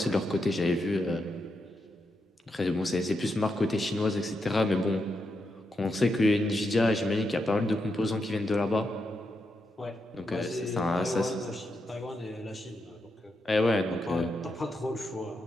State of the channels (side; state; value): both; normal; correlation 0.84